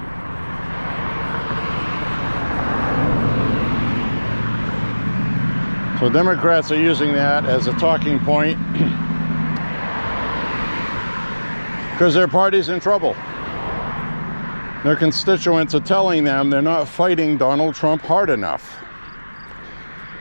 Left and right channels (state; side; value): inverted; both; correlation -1.00